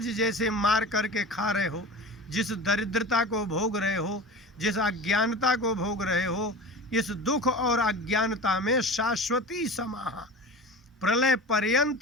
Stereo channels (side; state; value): both; normal; correlation 0.33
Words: जैसे मार करके खा रहे हो, जिस दरिद्रता को भोग रहे हो, जिस अज्ञानता को भोग रहे हो, इस दुख और अज्ञानता में शाश्वती समाहा, प्रलय